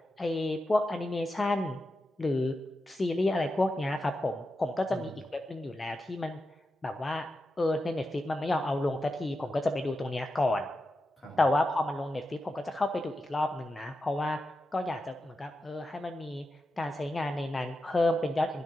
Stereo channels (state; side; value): normal; both; correlation 0.89